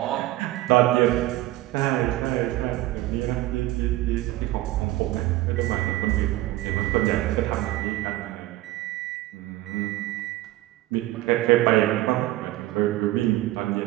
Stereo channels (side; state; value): left; quieter; 17.0 dB